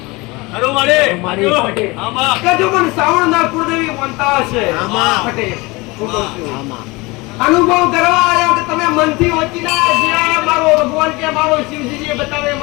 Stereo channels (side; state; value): right; quieter; 23.9 dB